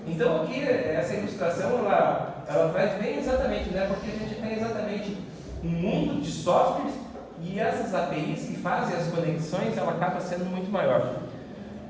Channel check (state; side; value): identical; both; correlation 1.00